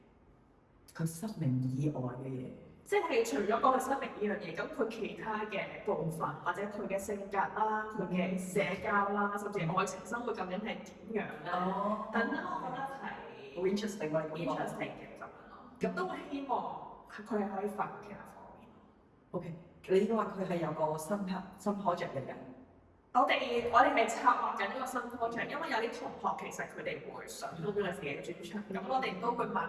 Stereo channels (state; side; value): identical; both; correlation 1.00